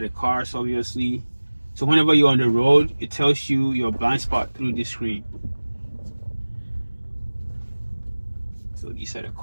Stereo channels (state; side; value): inverted; both; correlation -1.00